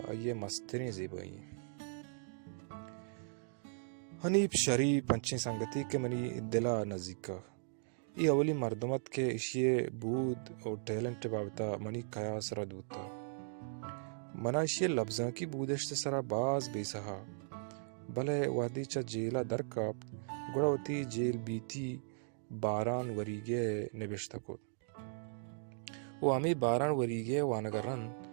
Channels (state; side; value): silent; left; digital silence